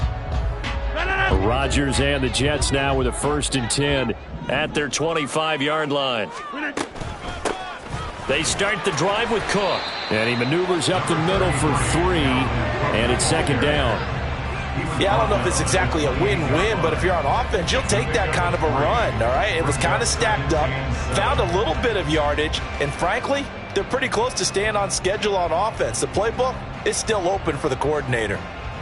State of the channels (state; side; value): identical; both; correlation 1.00